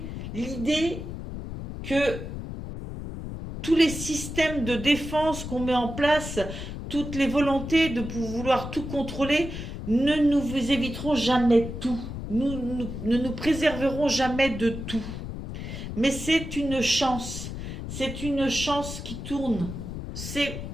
l'idée que tous les systèmes de défense qu'on met en place, toutes les volontés de vouloir tout contrôler, ne nous éviteront jamais tout. Ne nous préserveront jamais de tout. Mais c'est une chance. C'est une chance qui tourne. C'est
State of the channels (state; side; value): noise; left; rumble, 8 dB below the sound